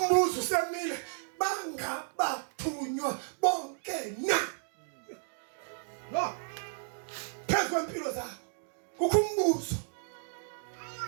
usemile bangabathunywa bonke na phezu kwempilo zabo kukho umbuzo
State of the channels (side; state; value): left; silent; digital silence